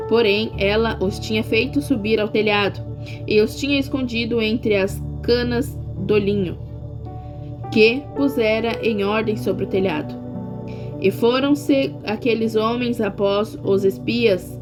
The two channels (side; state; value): both; identical; correlation 1.00